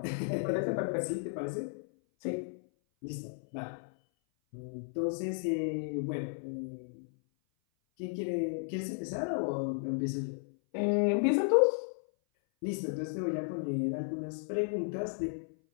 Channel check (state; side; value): silent; right; 55 dB below the other